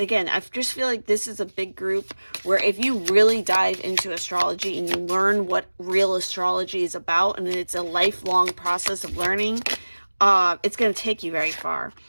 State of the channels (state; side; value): inverted; both; correlation -1.00